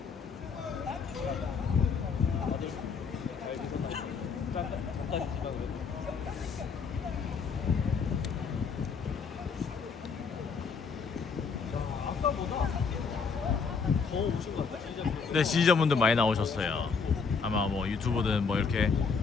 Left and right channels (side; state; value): right; quieter; 5.4 dB